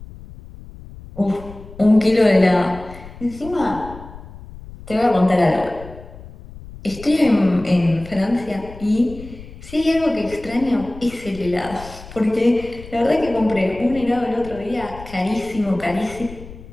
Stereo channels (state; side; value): noise; left; rumble, 16 dB below the sound